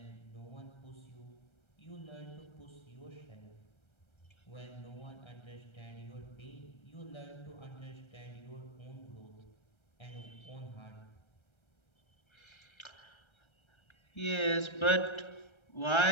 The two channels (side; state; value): right; late; 1.3 ms